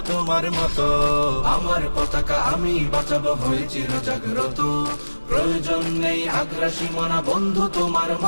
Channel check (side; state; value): both; inverted; correlation -1.00